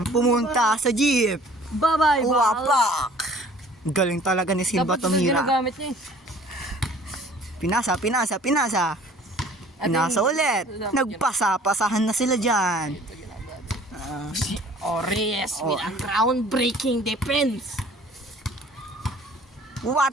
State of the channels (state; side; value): normal; both; correlation 0.52